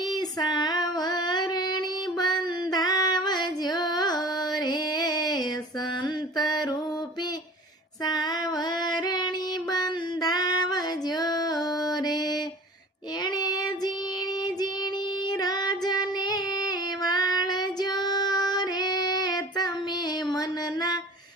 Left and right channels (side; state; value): both; normal; correlation 0.43